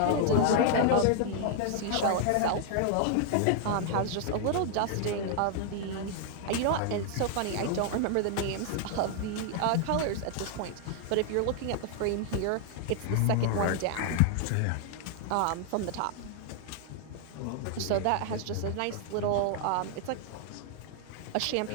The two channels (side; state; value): both; different; correlation 0.00